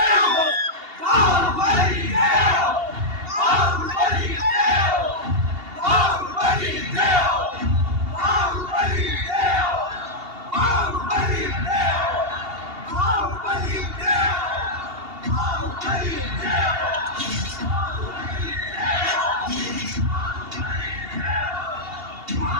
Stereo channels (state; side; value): late; left; 2.8 ms